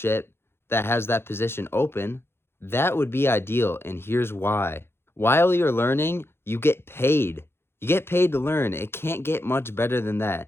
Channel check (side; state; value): right; late; 0.11 ms